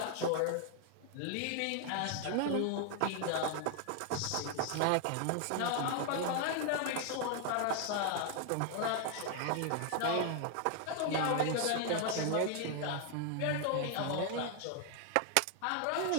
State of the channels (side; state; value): both; different; correlation 0.00